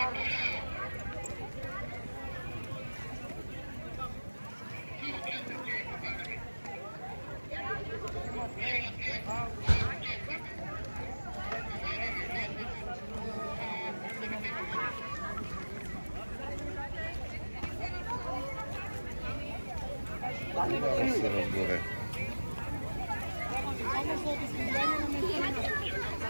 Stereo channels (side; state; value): both; inverted; correlation -1.00